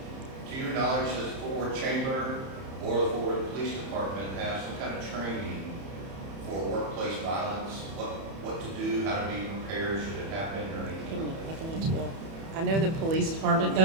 To your knowledge, does the Fort Worth Chamber or the Fort Worth Police Department have some kind of training for workplace violence? What to do, how to be prepared, should it happen, or anything? I can answer that. I know the police department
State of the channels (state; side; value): late; left; 31 ms